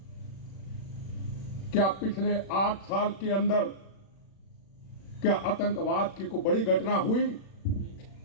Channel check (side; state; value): right; late; 36 ms